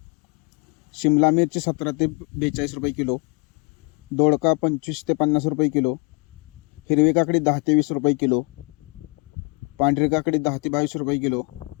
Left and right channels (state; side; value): quieter; right; 32.7 dB